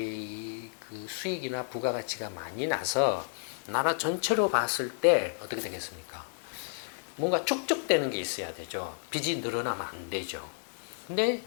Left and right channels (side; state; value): right; silent; 57 dB below the other